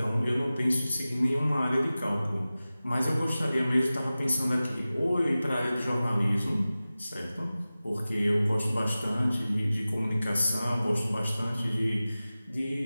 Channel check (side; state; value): both; inverted; correlation -0.96